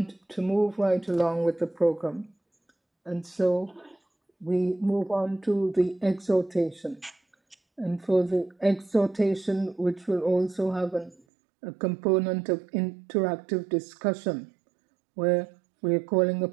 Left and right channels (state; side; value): drops out; left; at 11.2 s